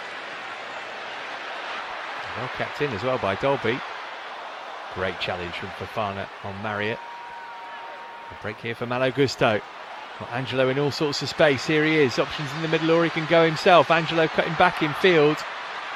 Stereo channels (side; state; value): both; identical; correlation 1.00